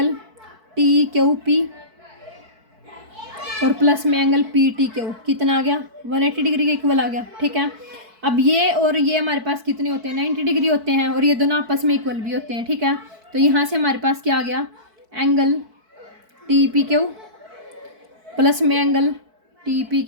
टी क्यू पी और प्लस में एंगल पी टी क्यू, कितना आ गया 180 डिग्री के इक्वल आ गया, ठीक है। अब ये और ये हमारे पास कितने होते हैं 90 डिग्री होते हैं, और ये दोनों आपस में इक्वल भी होते हैं, ठीक है। तो यहाँ से हमारे पास क्या आ गया, angle T P Q plus में angle T P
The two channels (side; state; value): left; late; 4.6 ms